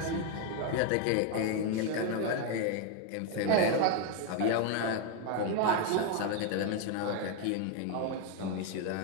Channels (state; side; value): different; both; correlation 0.01